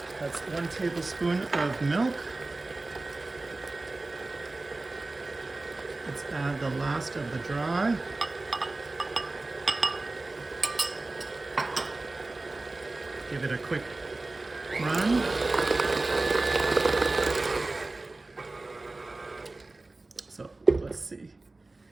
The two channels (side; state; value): left; quieter; 3.2 dB